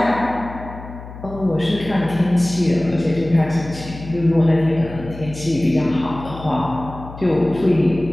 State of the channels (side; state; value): left; noise; hum, 14 dB below the sound